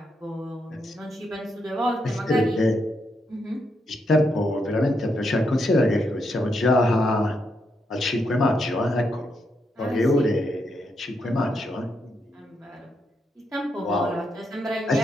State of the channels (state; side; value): normal; both; correlation 0.80